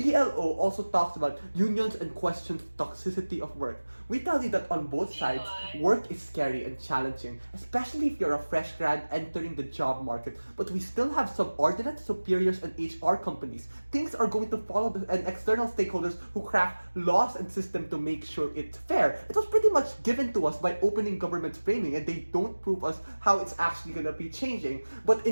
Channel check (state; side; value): inverted; both; correlation -1.00